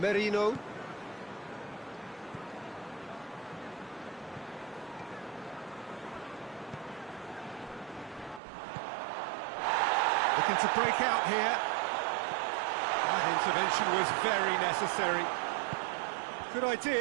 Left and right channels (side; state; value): left; drops out; at 8.4 s